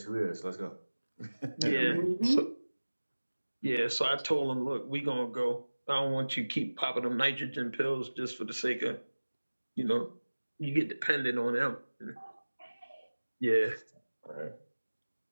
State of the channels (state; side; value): inverted; both; correlation -1.00